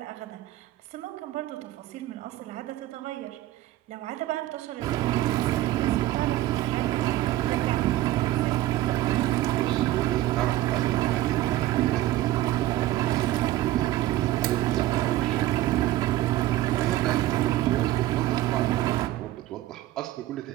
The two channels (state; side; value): quieter; left; 15.1 dB